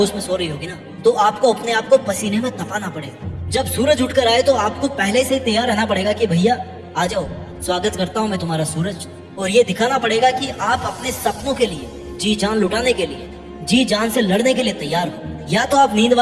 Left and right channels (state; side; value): identical; both; correlation 1.00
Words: में सो रही होगी ना, तो आपको अपने आप को पसीने में तपाना पड़ेगा। जब सूरज उठकर आए तो आपको पहले से तैयार रहना पड़ेगा कि भैया आ जाओ, स्वागत करता हूँ मैं तुम्हारा सूरज। और ये दिखाना पड़ेगा कि आप अपने सपनों के लिए जी जान लुटाने के लिए, जी जान से लड़ने के लिए तैयार हो। या तो आप नींद